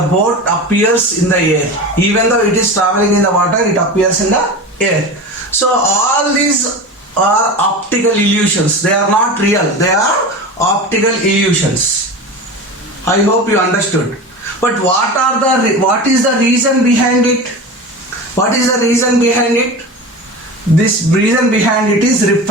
boat appears in the air. Even though it is traveling in the water, it appears in the air. So all these are optical illusions. They are not real. They are optical illusions. I hope you understood. But what is the reason behind it? What is the reason behind it? This reason behind it is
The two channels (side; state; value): both; normal; correlation 0.29